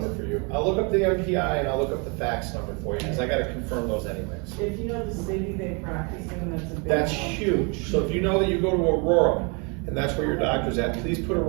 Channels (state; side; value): quieter; left; 32.9 dB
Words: for you. I'll look up the MPI and I'll look up the fax number for you, because I gotta confirm those anyways. If you know the city they practice in, that's a big. That's help. huge. So if you know that you go to Aurora, and that's where your doctor's at, please put